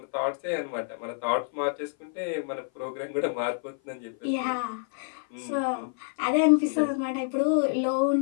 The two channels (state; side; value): silent; right; 56 dB below the other